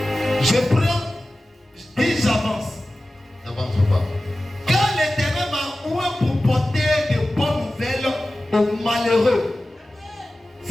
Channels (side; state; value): both; normal; correlation 0.95